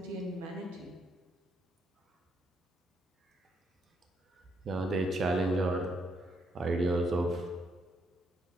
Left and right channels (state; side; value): normal; both; correlation 0.75